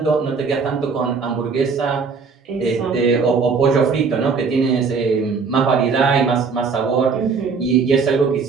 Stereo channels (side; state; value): left; quieter; 5.1 dB